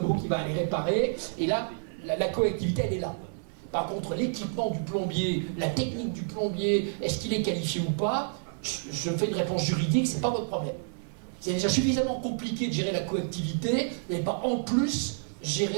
qui va aller réparer, et là, la coactivité, elle est là. Par contre, l'équipement du plombier, la technique du plombier, est-ce qu'il est qualifié ou pas? Je fais une réponse juridique, c'est pas votre problème. C'est déjà suffisamment compliqué de gérer la coactivité, vous n'allez pas en plus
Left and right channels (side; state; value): left; silent; digital silence